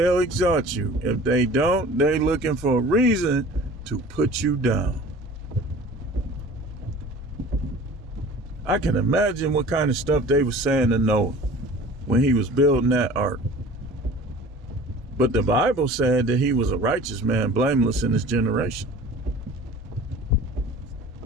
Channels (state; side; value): normal; both; correlation 0.43